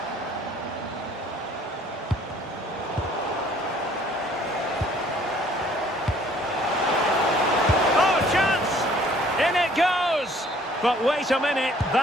Oh, chance! In it goes! But wait a minute,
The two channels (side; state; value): both; normal; correlation 0.58